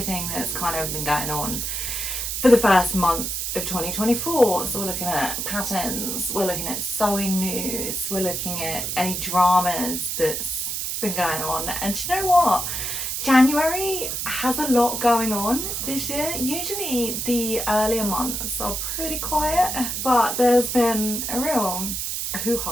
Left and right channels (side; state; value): right; noise; hiss, 3 dB below the sound